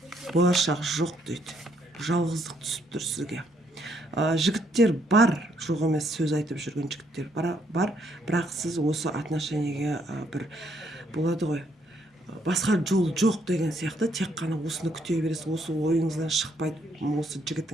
Болашақ жоқ дейді. Жалғыздық түсіп тұр сізге. Жігіттер бар, жоқ емес сөз айтып жүрген жігіттер бар, бірақ сіз осы отношениеге бір болады ғой, басқа жол жоқ деген сияқты, тек қана осыны күте бересіз, осы ойыңыздан шықпайды осы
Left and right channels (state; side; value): normal; both; correlation 0.71